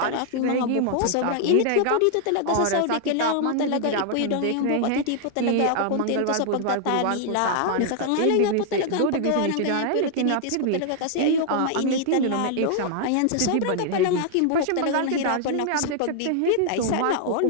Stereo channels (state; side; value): different; both; correlation 0.00